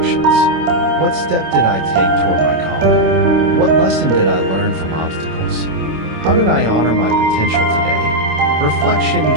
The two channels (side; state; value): left; late; 26 ms